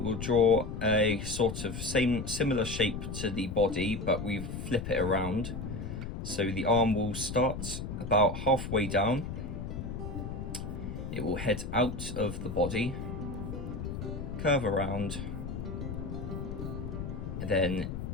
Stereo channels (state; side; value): noise; left; rumble, 6 dB below the sound